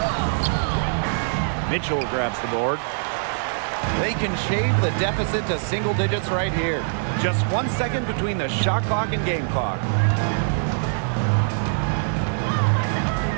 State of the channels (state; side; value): silent; left; digital silence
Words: Mitchell grabs the board. They can shave the deficit to single digits right here. Just 1 second between the shot clock and game clock.